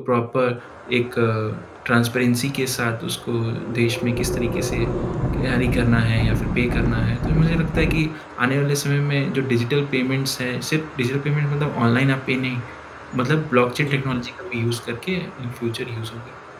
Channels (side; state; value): both; identical; correlation 1.00